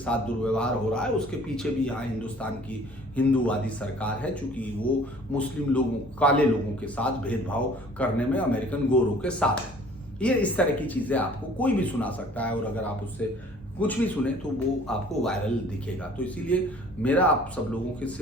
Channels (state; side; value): normal; both; correlation 0.52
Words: दुर्व्यवहार हो रहा है उसके पीछे भी यहाँ हिंदुस्तान की हिंदूवादी सरकार है, चूंकि वो मुस्लिम लोगों, काले लोगों के साथ भेदभाव करने में अमेरिकन गोरों के साथ है। ये इस तरह की चीजें आपको कोई भी सुना सकता है, और अगर आप उससे कुछ भी सुने तो वो आपको वायरल दिखेगा। तो इसीलिए मेरा आप सब लोगों के